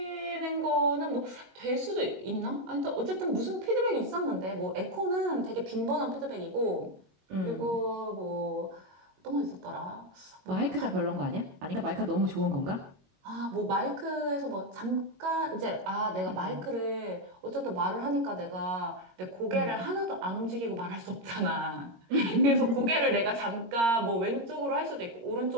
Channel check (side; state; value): left; late; 22 ms